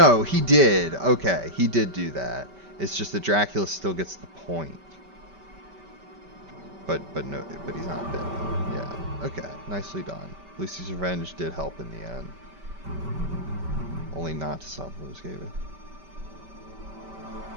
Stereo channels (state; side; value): late; left; 5.2 ms